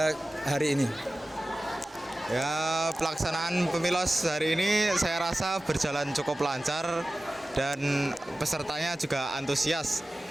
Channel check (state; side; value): normal; both; correlation 0.96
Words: hari ini? Ya, pelaksanaan pemilos hari ini saya rasa berjalan cukup lancar dan pesertanya juga antusias